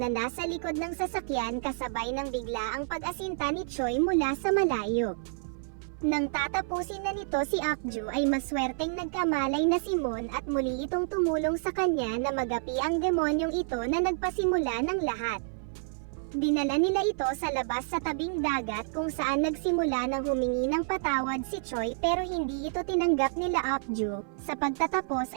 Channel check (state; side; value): silent; left; 58 dB below the other